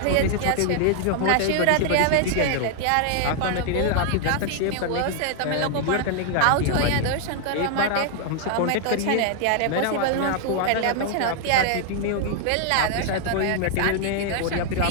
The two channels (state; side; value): different; both; correlation 0.00